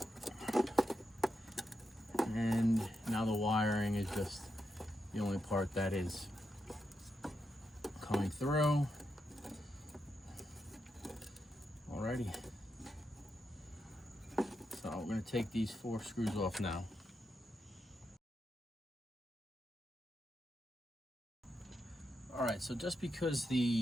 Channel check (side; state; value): both; normal; correlation 0.85